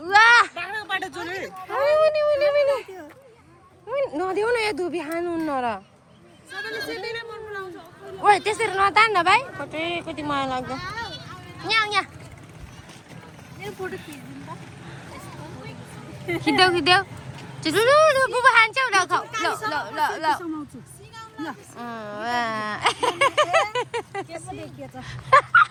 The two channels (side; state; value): both; identical; correlation 1.00